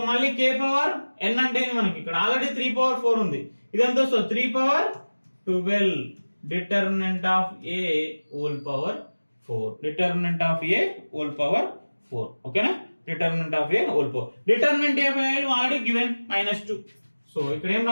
మళ్ళీ K పవర్ n అంటే మనకి ఇక్కడ ఆల్రెడీ 3 power 4 ఉంది. ఇదంతా so 3 power 12 determinant of A whole power 4. Determinant of A whole power 4. ఓకేనా? Determinant of A whole power. Determinant A value already given -2. So ఇక్కడ ఏం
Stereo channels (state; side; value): inverted; both; correlation -1.00